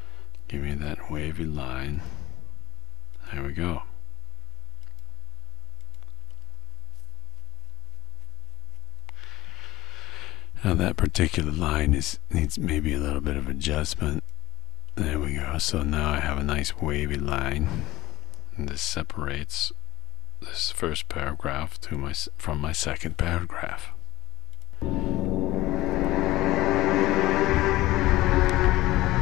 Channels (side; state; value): right; quieter; 17.5 dB